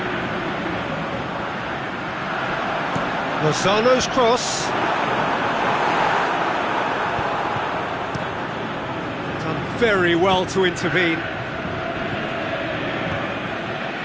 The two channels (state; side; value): identical; both; correlation 1.00